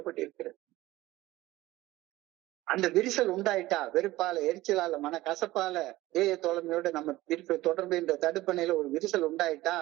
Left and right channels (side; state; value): left; quieter; 17.5 dB